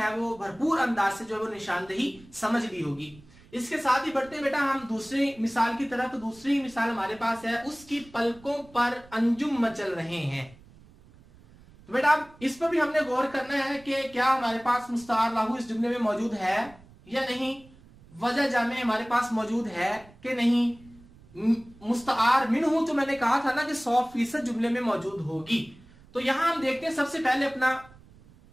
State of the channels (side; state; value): right; noise; rumble, 24 dB below the sound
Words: वो भरपूर अंदाज से जो है वो निशानदेही समझ ली होगी। इसके साथ ही बढ़ते बेटा हम दूसरी मिसाल की तरफ। तो दूसरी मिसाल हमारे पास है, उसकी पलकों पर अंजुम मचल रहे हैं। तो बेटा इस पर भी हमने गौर करना है कि क्या हमारे पास मुस्तआर लाहू इस जुमले में मौजूद है या नहीं, वजह जामे हमारे पास मौजूद है कि नहीं। मुस्तआर मिन्हु तो मैंने कहा था ना कि 100% जुमले में मौजूद होगी। तो यहां हम देखते हैं सबसे पहले अपना